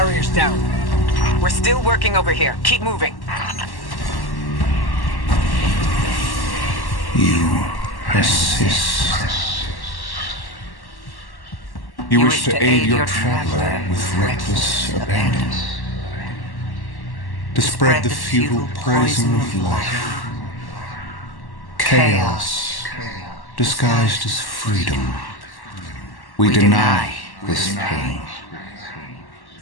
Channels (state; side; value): late; right; 1.1 ms